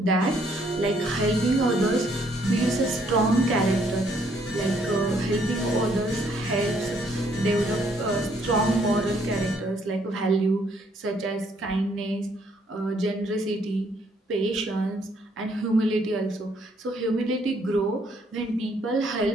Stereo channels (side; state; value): both; normal; correlation 0.68